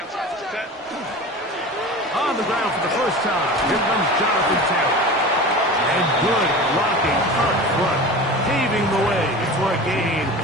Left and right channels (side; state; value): both; normal; correlation 0.34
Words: Set. On the ground for the first time, here comes Jonathan Taylor. And good blocking up front, paving the way for a gain